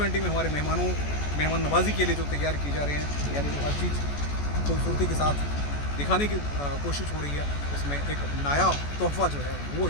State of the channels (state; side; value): late; right; 14 ms